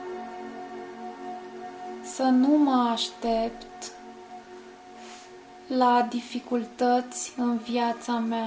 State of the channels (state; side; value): identical; both; correlation 1.00